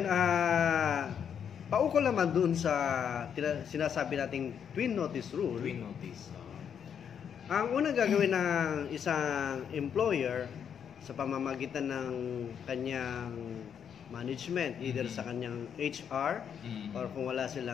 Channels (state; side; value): quieter; right; 8.0 dB